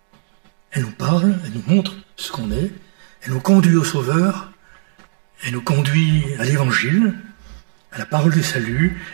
Elle nous parle, elle nous montre ce qu'on est, elle nous conduit au Sauveur, elle nous conduit à l'Évangile, à la parole du salut,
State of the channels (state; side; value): silent; left; digital silence